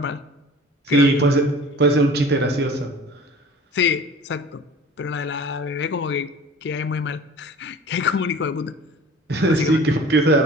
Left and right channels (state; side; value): normal; both; correlation 0.43